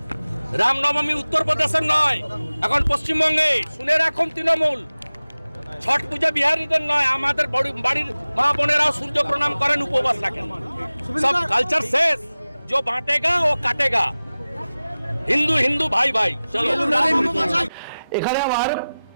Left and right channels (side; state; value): both; inverted; correlation -0.97